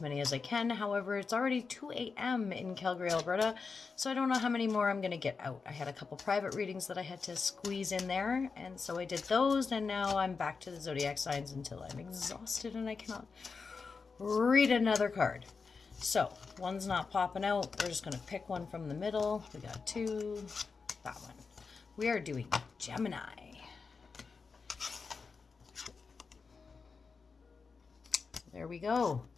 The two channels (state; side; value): quieter; right; 4.9 dB